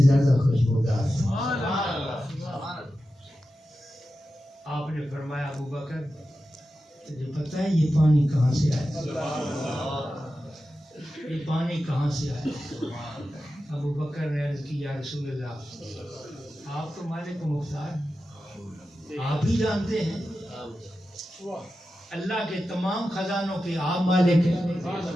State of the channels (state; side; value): normal; both; correlation 0.92